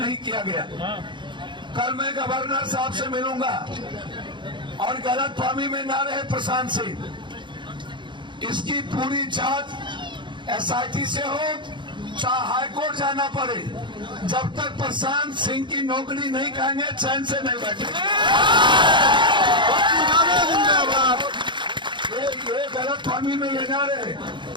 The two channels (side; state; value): left; late; 0.23 ms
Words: किया गया। कल मैं गवर्नर साहब से मिलूंगा और गलतफहमी में ना रहे प्रशांत सिंह, इसकी पूरी जांच SIT से हो, चाहे हाईकोर्ट जाना पड़े। जब तक प्रशांत सिंह की नौकरी नहीं कहेंगे चैन से नहीं बैठेंगे। ये गलतफहमी में ये ना रहे